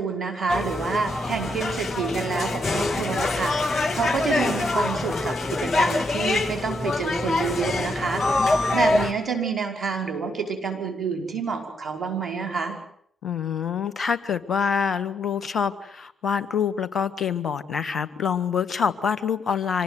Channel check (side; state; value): both; normal; correlation 0.75